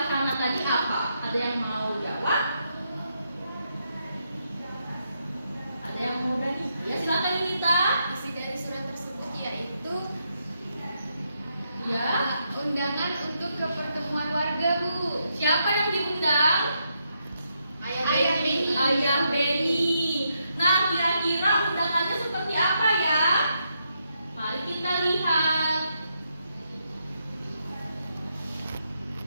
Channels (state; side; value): inverted; both; correlation -0.80